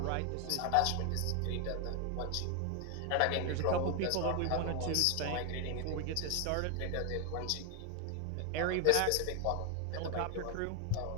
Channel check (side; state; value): both; different; correlation 0.01